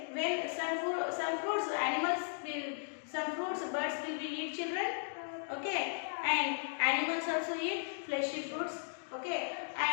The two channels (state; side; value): silent; right; digital silence